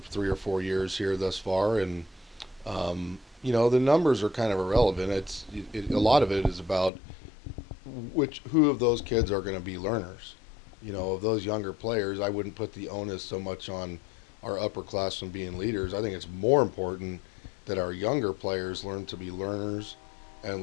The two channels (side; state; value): right; drops out; at 6.9 s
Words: or 4 years here thus far. And the numbers are kind of irrelevant. A lot of it is about who of those kids are going to be learners. Of those younger players, I wouldn't put the onus so much on our upperclassmen being leaders. I think it's more important that our younger players learn to be learners